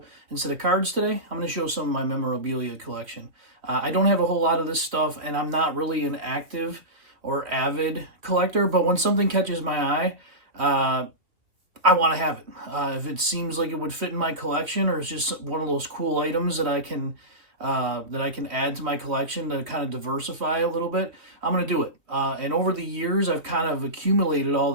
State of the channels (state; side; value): late; left; 2.8 ms